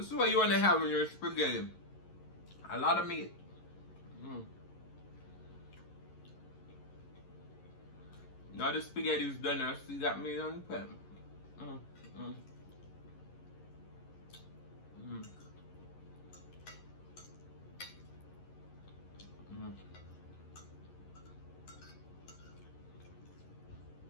is what you want to have in your spaghetti. A lot of meat. Now the spaghetti is done. I still got meat on the pan.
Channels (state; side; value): late; right; 11 ms